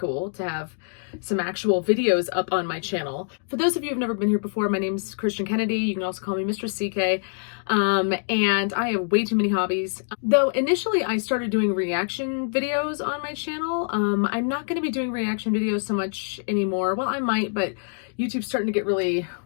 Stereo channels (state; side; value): silent; right; digital silence